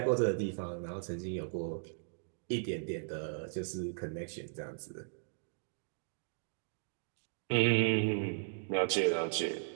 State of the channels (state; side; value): silent; left; digital silence